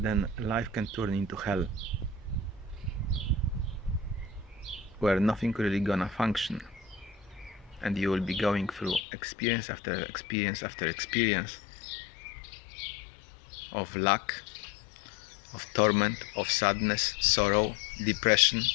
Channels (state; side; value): drops out; right; at 9.1 s